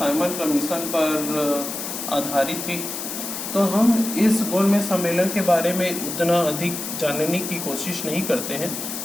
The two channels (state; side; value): noise; left; hiss, 6 dB below the sound